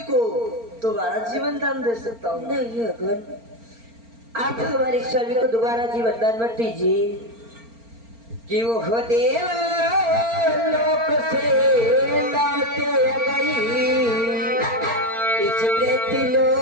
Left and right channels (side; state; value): left; late; 4.4 ms